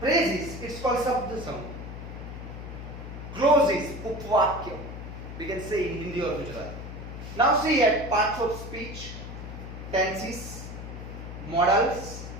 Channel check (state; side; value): noise; left; hum, 10 dB below the sound